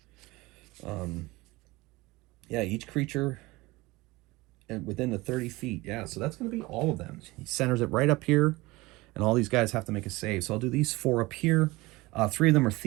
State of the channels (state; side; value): quieter; left; 21.4 dB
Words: Yeah, each creature within the 30 feet. Yeah, so that's going to be all of them. He centers it right up here, and all these guys have to make a save. So I'll do these 4 up here. 3 of them are